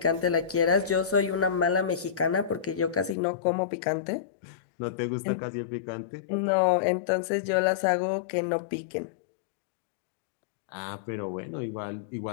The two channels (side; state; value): right; drops out; at 3.2 s